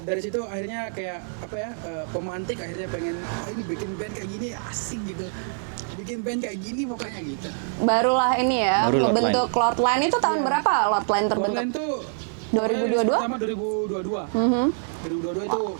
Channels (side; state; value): left; silent; digital silence